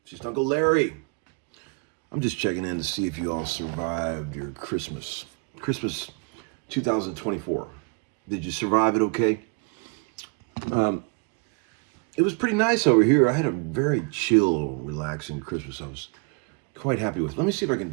It's just Uncle Larry. I'm just checking in to see if you all survived your Christmas. Christmas 2024. Did you survive it okay? It was pretty nice over here. I had a very chill, relaxing Christmas. I was quite happy with. Let me see if I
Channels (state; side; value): quieter; left; 32.0 dB